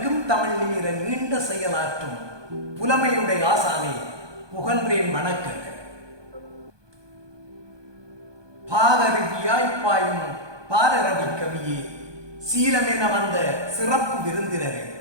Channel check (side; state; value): left; late; 1.2 ms